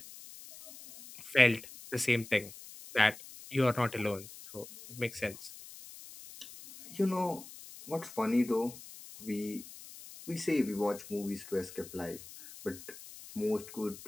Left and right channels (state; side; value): noise; left; hiss, 16 dB below the sound